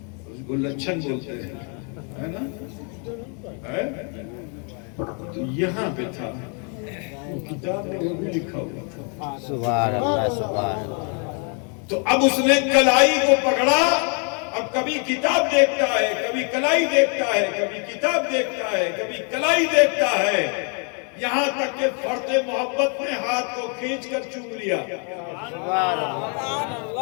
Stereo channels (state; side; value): quieter; right; 39.1 dB